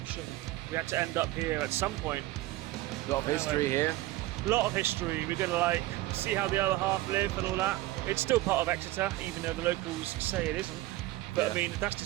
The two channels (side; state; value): left; quieter; 17.3 dB